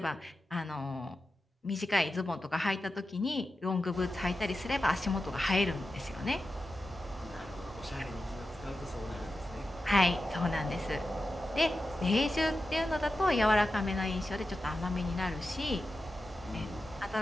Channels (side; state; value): both; normal; correlation 0.92